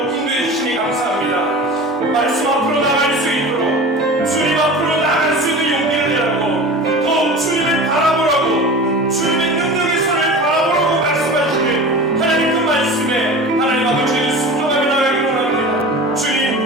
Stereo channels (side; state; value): both; normal; correlation 0.34